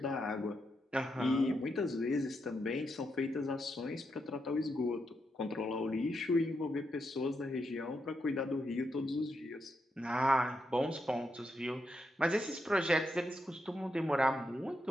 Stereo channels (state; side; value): normal; both; correlation 0.83